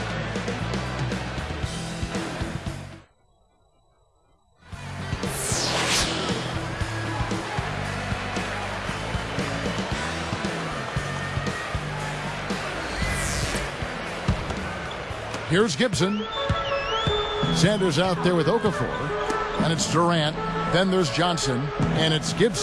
Here's Gibson. Sanders out there with Okafor. And it's Durant. Then there's Johnson. And it's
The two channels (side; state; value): both; identical; correlation 1.00